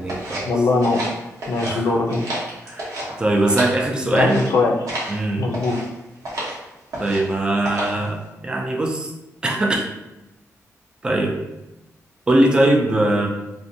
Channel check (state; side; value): normal; both; correlation 0.79